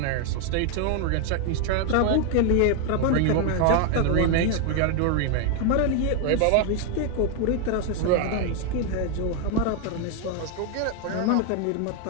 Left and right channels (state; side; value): different; both; correlation 0.01